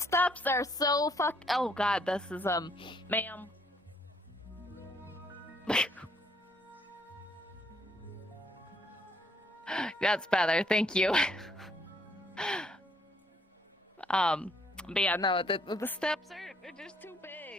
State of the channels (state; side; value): normal; both; correlation 0.68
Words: are so Oh God, this is ma'am. That's better. Thank you. But yeah, no, the steps are just too